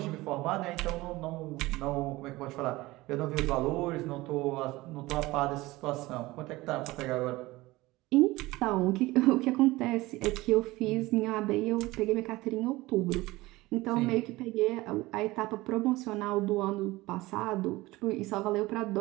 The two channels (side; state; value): left; quieter; 19.8 dB